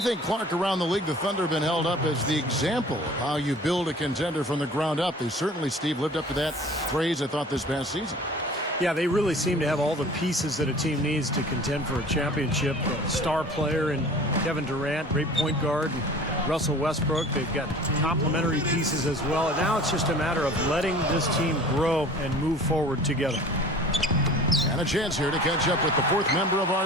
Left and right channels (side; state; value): both; normal; correlation 0.44